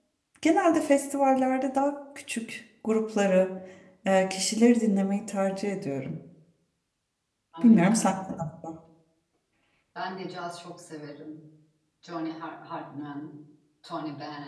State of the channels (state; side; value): identical; both; correlation 1.00